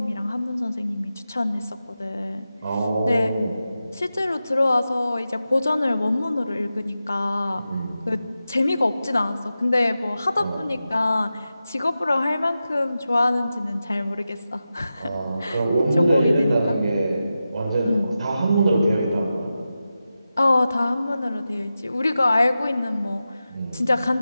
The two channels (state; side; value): inverted; both; correlation -0.92